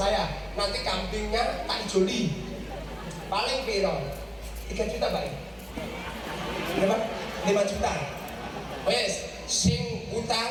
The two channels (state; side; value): identical; both; correlation 1.00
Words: nanti kambingnya tak joli paling piro 3 juta Pak. Berapa? 5 juta. Wes sing utang